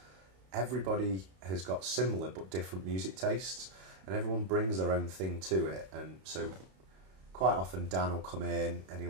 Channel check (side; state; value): left; late; 32 ms